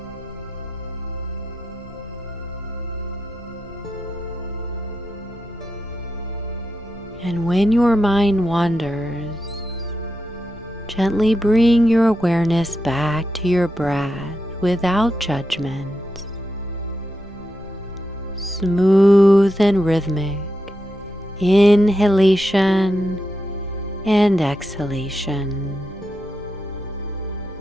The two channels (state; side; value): noise; left; rumble, 21 dB below the sound